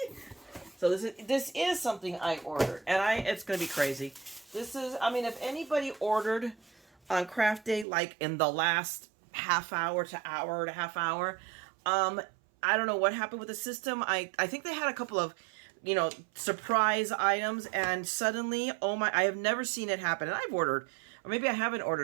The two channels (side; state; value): left; drops out; at 7.9 s